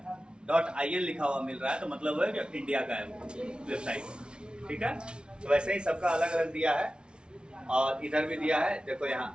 .in लिखा हुआ मिल रहा है तो मतलब है कि इंडिया का है वेबसाइट। ठीक है, तो वैसे ही सबका अलग अलग दिया है। और इधर भी दिया है, देखो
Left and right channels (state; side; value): late; left; 0.056 ms